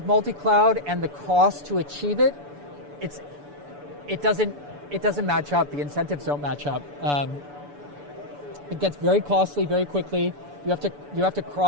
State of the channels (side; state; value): left; late; 6.9 ms